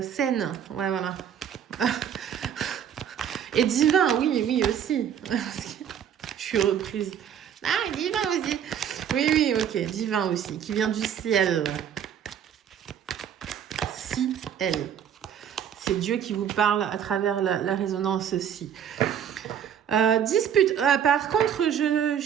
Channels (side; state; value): left; quieter; 8.9 dB